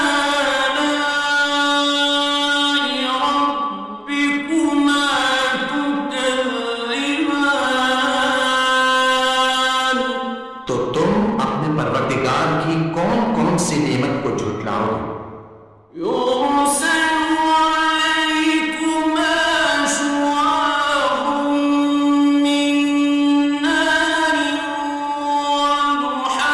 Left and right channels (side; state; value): both; identical; correlation 1.00